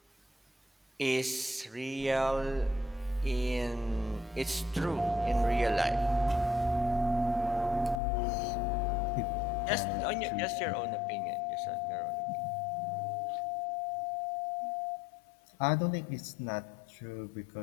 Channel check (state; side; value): drops out; right; at 8.0 s